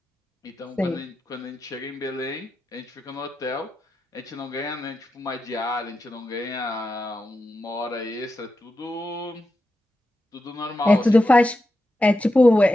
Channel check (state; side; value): normal; both; correlation 0.89